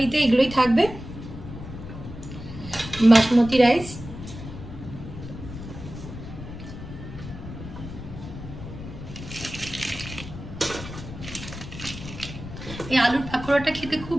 এগুলোই থাকবে। বাসমতি রাইস, এই আলুর পাকোড়াটা খেতে খুব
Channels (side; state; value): left; noise; rumble, 11 dB below the sound